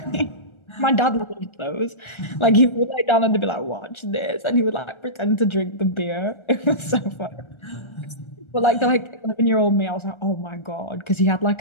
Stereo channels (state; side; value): late; right; 1.3 ms